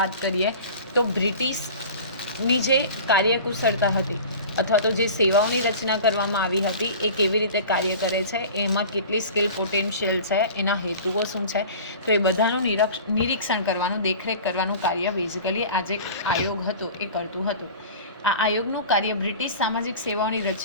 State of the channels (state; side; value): inverted; both; correlation -0.39